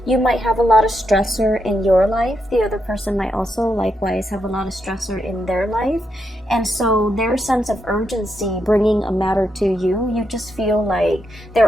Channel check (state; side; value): normal; both; correlation 0.82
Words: You might have a lot of stressor in your life. The other person might also likewise have a lot of stressor in their life. And so their sense of urgency bringing a matter to you, you just feel like